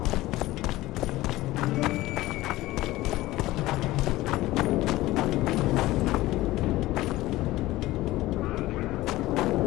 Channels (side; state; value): right; quieter; 17.5 dB